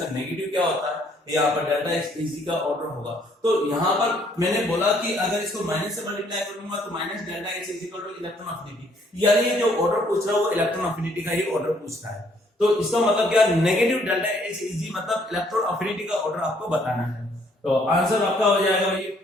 नेगेटिव क्या होता है, यहाँ पर डेल्टा एच इजी का ऑर्डर होगा। तो यहाँ पर मैंने बोला कि अगर इसको माइनस से मल्टीप्लाई करूंगा तो minus delta H is equal two electron affinity, यानी ये जो ऑर्डर पूछ रहा है वो इलेक्ट्रॉन अफिनिटी का ही ऑर्डर पूछ रहा है। तो इसका मतलब क्या, नेगेटिव डेल्टा एच इजी मतलब इलेक्ट्रॉन अफिनिटी का ऑर्डर आपको बताना है। तो आंसर आपका हो जाएगा भाई,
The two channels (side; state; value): both; normal; correlation 0.65